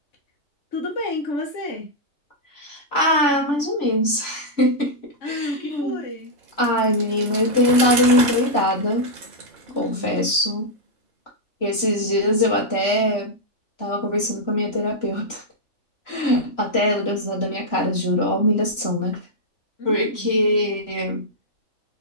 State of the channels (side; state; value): right; late; 3.0 ms